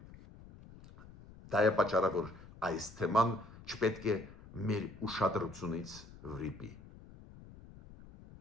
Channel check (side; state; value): left; noise; rumble, 19 dB below the sound